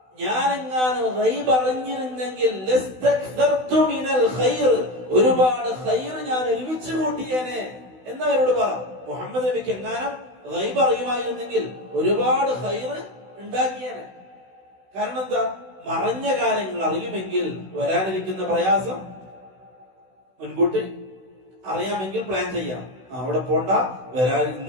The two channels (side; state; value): left; late; 16 ms